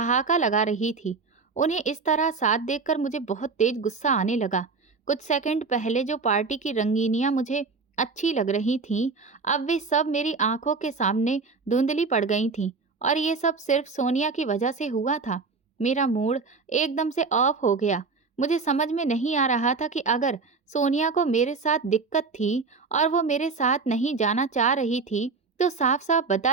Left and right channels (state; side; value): quieter; left; 4.5 dB